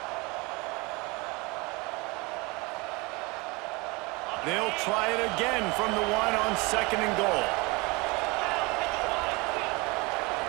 They'll try it again from the 1 on second and goal.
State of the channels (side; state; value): left; quieter; 26.1 dB